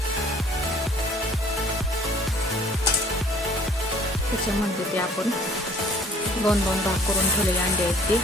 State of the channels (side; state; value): both; normal; correlation 0.56